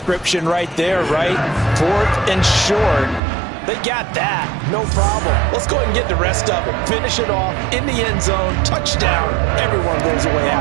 right there, right? Fourth and short. They got that. No problem. Let's go ahead and get the rest of it. Finish it off in the end zone. Touchdown. Everyone goes away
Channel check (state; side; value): drops out; left; at 3.2 s